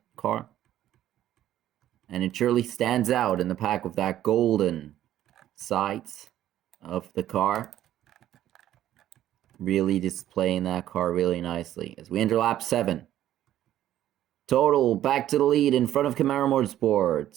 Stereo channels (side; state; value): left; quieter; 12.4 dB